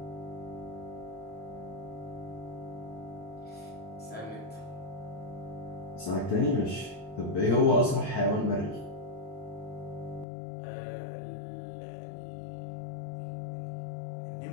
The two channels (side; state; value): right; drops out; at 10.2 s